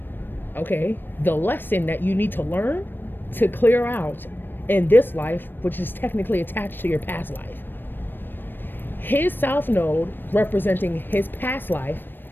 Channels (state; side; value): late; right; 0.095 ms